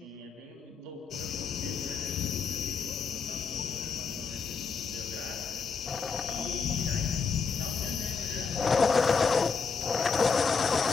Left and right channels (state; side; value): quieter; right; 5.2 dB